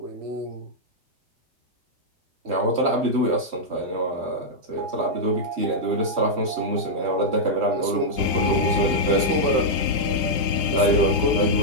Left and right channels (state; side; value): late; left; 3.1 ms